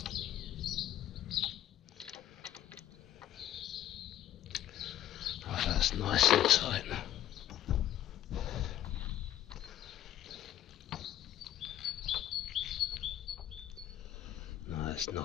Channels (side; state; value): right; quieter; 12.0 dB